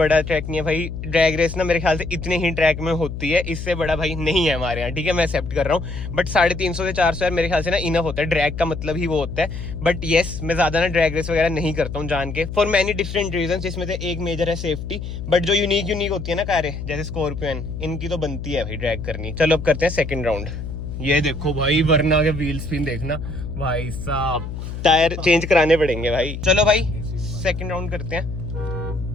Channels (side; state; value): left; noise; hum, 7 dB below the sound